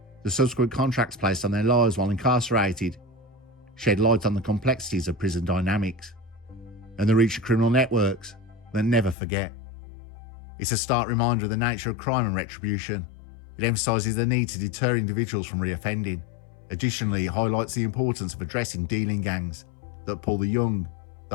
The subsequent contracts placed on their lives while incarcerated shed light on the complexities of prison dynamics and the reach of criminal networks that never forget. It's a stark reminder of the nature of crime and retribution. It emphasises the need to deter individuals from reoffending. Additionally, it highlights the importance of addressing dealing gangs that pull the young,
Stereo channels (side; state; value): right; drops out; at 9.2 s